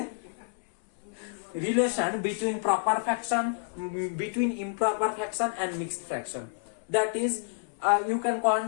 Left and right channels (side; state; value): right; silent; 58 dB below the other